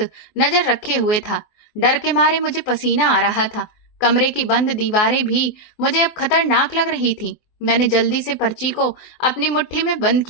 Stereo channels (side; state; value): right; late; 24 ms